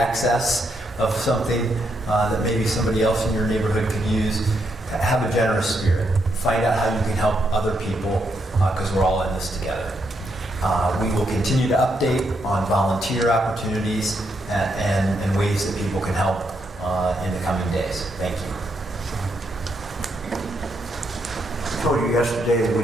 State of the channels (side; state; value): both; normal; correlation 0.78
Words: of something that maybe somebody else in your neighborhood could use, have a generous spirit. Find out how you can help other people, because we're all in this together. We will continue to update on volunteer opportunities and ways that people can help in the coming days. Thank you. I told you yesterday that we